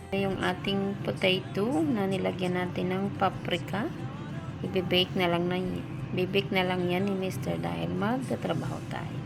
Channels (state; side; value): identical; both; correlation 1.00